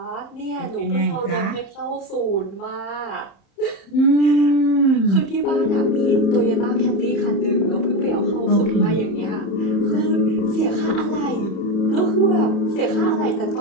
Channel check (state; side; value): late; right; 30 ms